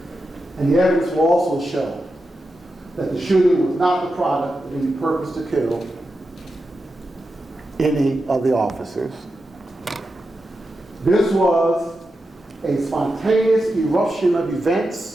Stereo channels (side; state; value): both; normal; correlation 0.89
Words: And the evidence will also show that the shooting was not the product of any purpose to kill any of the officers. This was a spontaneous eruption of